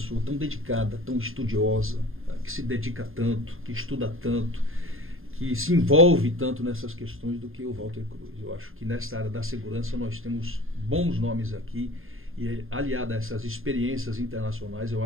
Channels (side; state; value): left; late; 0.60 ms